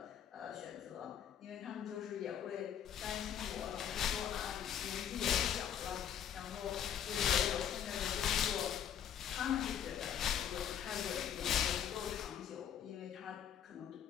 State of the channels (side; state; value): right; quieter; 9.4 dB